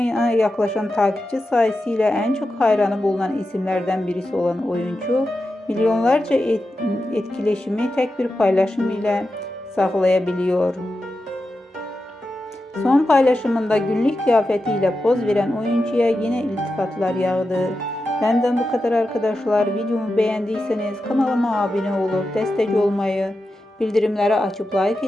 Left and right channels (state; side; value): normal; both; correlation 0.90